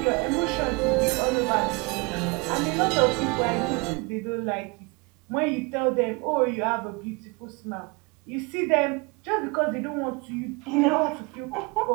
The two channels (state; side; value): quieter; left; 28.8 dB